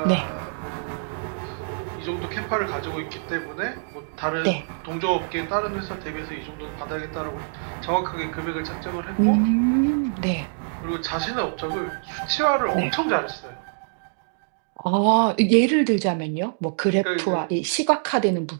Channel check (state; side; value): silent; left; digital silence